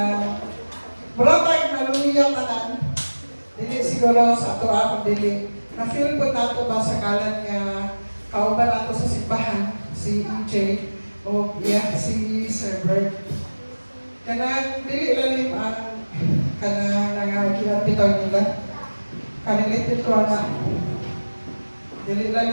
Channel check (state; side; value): inverted; both; correlation -1.00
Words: buratag naluya tanan. Dili siguro sa ato akong dili. Na feel ko nato ba sa kalan nga kauban ato sa simbahan si EJ o si Sir Bert. Kanang dili lalim ang kanang nangagilapitaw nila. Kanilitin ko na dili